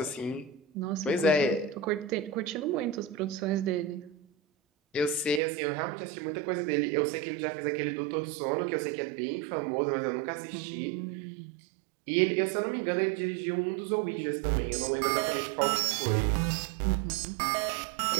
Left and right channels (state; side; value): drops out; left; at 5.4 s